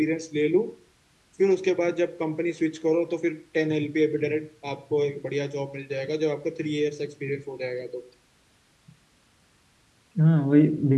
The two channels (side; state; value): both; identical; correlation 1.00